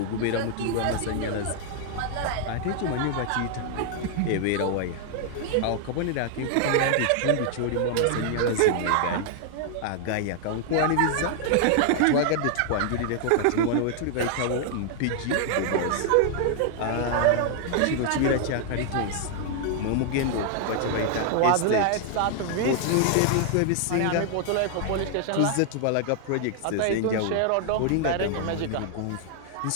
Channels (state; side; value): different; both; correlation 0.00